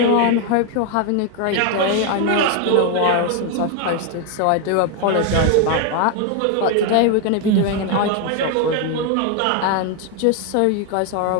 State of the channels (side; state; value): both; different; correlation 0.01